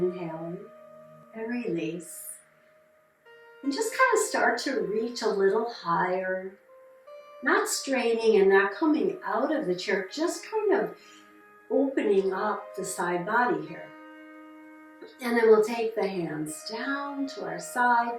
and release. And just kind of start to reach a little higher, not straining and not coming out of the chair, just kind of opening up the side body here. And then we'll take the hands down to our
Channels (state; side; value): identical; both; correlation 1.00